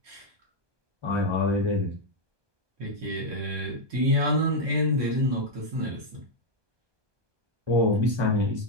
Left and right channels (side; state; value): left; late; 1.2 ms